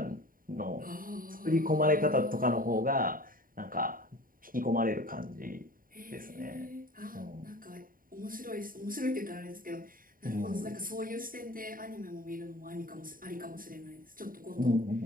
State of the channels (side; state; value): left; late; 0.41 ms